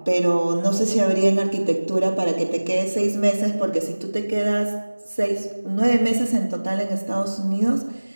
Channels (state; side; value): inverted; both; correlation -1.00